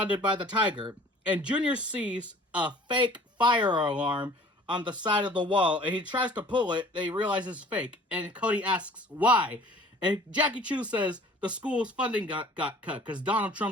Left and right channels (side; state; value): both; normal; correlation 0.49